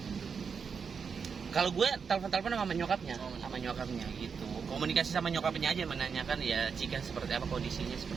Kalau gue telepon sama nyokapnya gitu. Komunikasi sama nyokapnya aja menanyakan ya Cika seperti apa kondisinya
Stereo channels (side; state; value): left; quieter; 6.0 dB